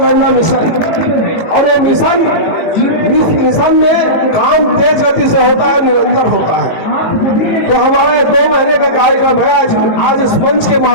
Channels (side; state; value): right; late; 18 ms